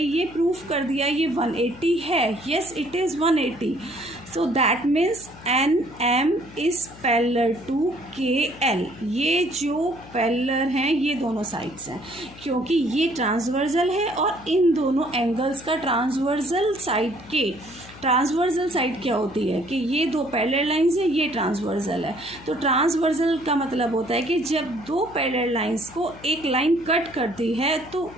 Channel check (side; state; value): left; noise; hum, 19 dB below the sound